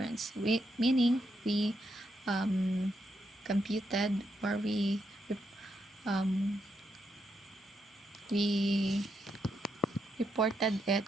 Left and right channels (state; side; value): normal; both; correlation 0.81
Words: Meaning we computed, or um, we reported it